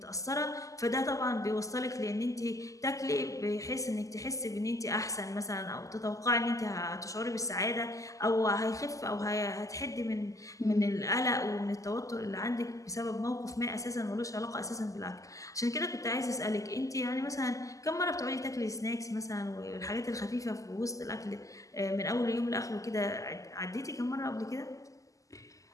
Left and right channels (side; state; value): right; late; 0.16 ms